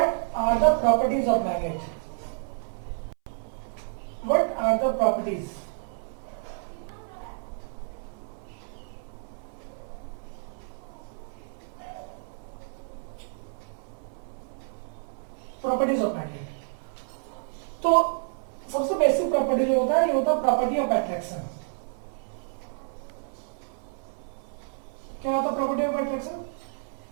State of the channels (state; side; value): silent; left; 58 dB below the other